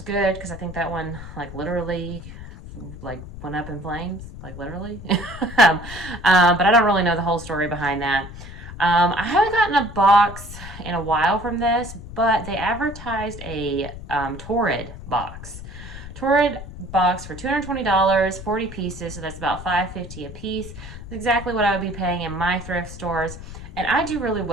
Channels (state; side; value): noise; left; rumble, 12 dB below the sound